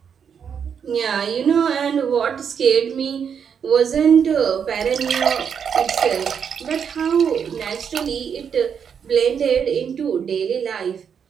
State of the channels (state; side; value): quieter; left; 7.3 dB